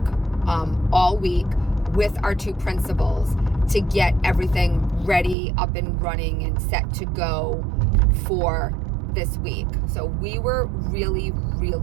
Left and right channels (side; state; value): left; drops out; at 5.4 s